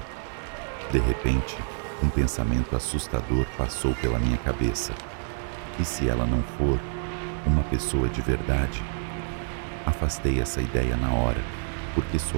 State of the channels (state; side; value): silent; left; digital silence